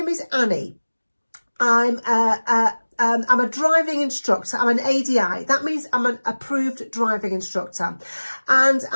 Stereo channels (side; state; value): both; inverted; correlation -1.00